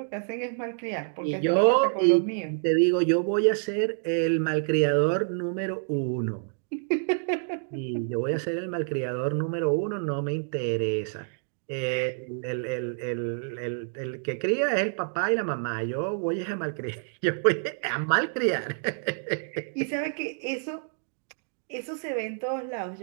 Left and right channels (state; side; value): silent; left; digital silence